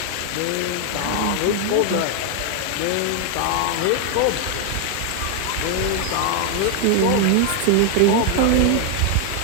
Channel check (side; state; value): both; different; correlation 0.00